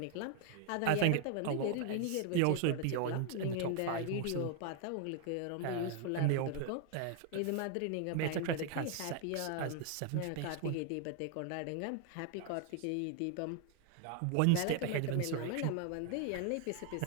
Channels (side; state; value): both; different; correlation 0.00